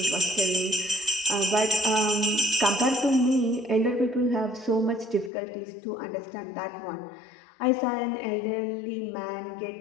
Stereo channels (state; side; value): drops out; right; at 5.3 s